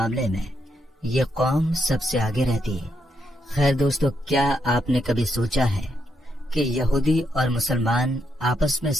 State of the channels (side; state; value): both; normal; correlation 0.79